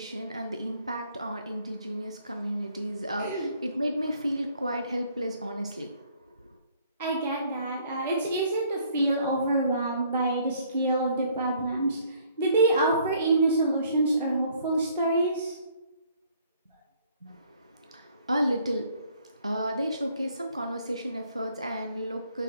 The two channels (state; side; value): inverted; both; correlation -0.63